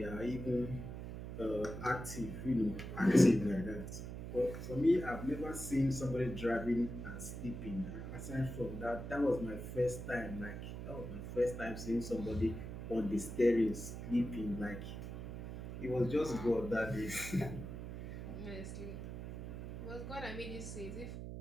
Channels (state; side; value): noise; right; hum, 7 dB below the sound